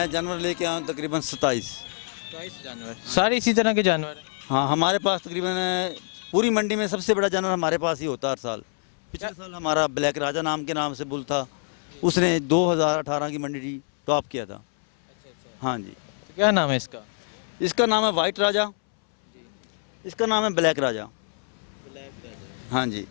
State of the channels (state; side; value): silent; right; 61 dB below the other